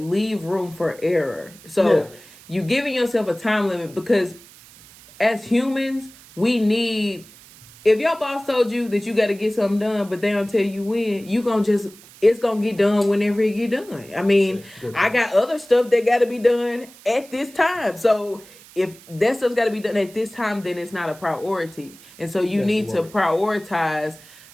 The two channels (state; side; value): noise; right; hiss, 22 dB below the sound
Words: leave room for error. So you giving yourself a time limit, because as humans, we need, if your boss told you that you got to get something done, but they don't tell you when, it's going to get done whenever it get done. I mean, I got other stuff that got to be done at this time. So if that stuff's got to be done at this time, then it's not a priority. And so you need to prioritize